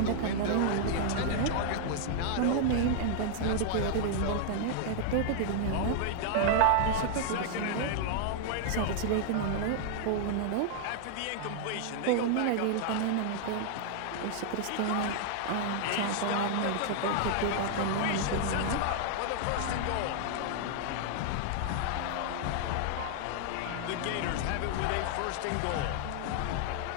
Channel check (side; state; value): both; different; correlation 0.00